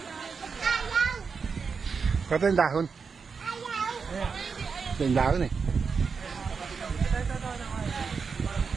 Kata yung dahon. Ito yung dahon eh.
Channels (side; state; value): left; quieter; 5.5 dB